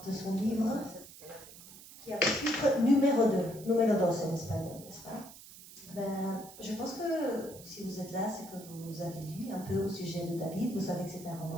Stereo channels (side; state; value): right; noise; hiss, 17 dB below the sound